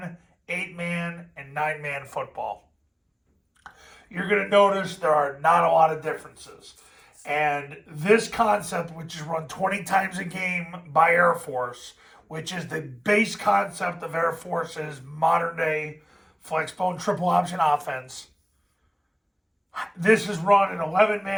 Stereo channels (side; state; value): both; identical; correlation 1.00